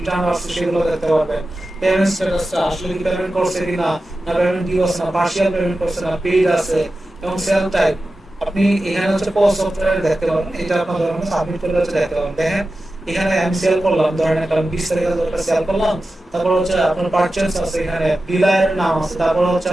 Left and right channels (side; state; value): both; normal; correlation 0.93